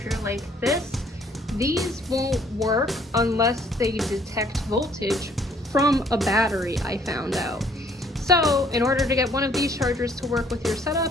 like this, these won't work unless they detect voltage from a battery, I found out. So in order to get one of these chargers to work with your setup,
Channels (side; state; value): both; normal; correlation 0.62